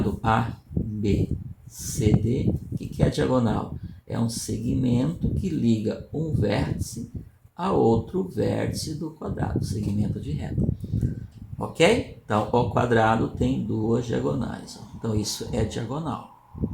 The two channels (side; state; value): both; identical; correlation 1.00